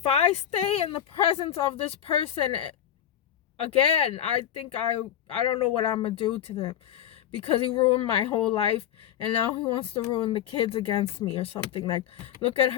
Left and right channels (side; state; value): right; quieter; 10.6 dB